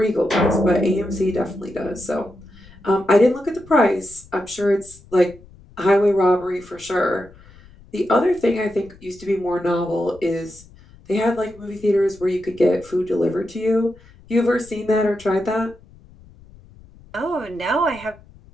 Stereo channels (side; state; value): left; noise; rumble, 23 dB below the sound